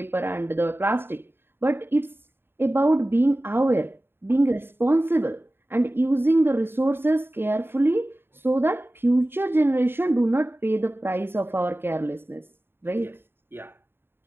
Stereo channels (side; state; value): left; late; 0.11 ms